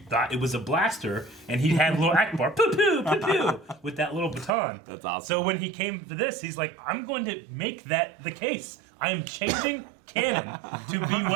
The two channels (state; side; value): drops out; left; at 4.5 s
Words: thought it was a blaster, and he had a little Akbar, poo poo, poo poo, with that little baton. That's awesome. So when he came to this, he's like, I'm going to make that the case. I am changing canon to be